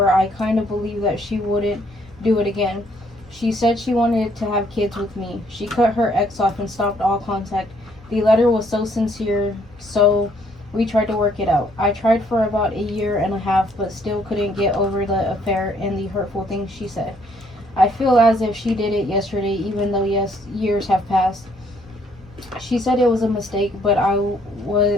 I kind of believe that she wouldn't do it again. She said she wanted to have kids with me. She cut her ex off and stopped all contact. The letter was so sincere, so we tried to work it out. I tried for about 1.5 years, but still couldn't get over the affair and the hurtful things she said. I feel as if she did it yesterday, even though years have passed. She said it was a mistake, but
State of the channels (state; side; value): normal; both; correlation 0.66